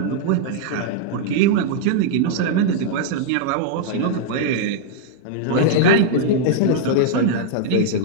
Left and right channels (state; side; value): different; both; correlation -0.01